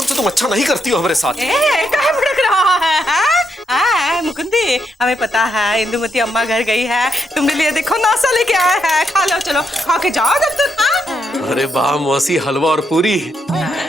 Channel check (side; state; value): both; normal; correlation 0.79